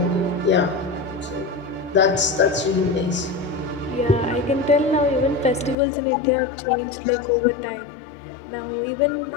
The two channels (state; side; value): drops out; right; at 5.8 s